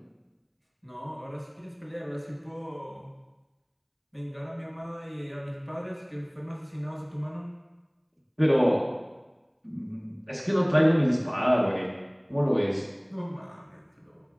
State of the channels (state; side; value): identical; both; correlation 1.00